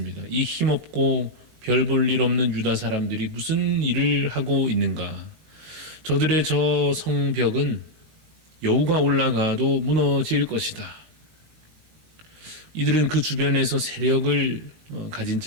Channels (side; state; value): left; late; 18 ms